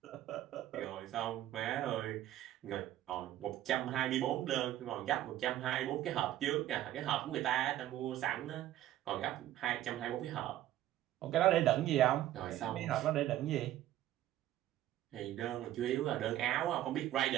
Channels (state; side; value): quieter; left; 13.3 dB